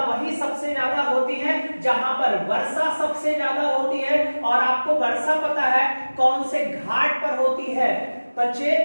वही सबसे ज्यादा होती है जहां पर वर्षा सबसे ज्यादा होती है। और आपको वर्षा पता है कौन से घाट पर होती है बच्चे,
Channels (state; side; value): inverted; both; correlation -1.00